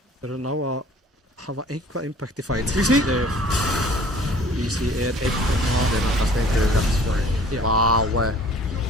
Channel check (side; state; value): both; normal; correlation 0.51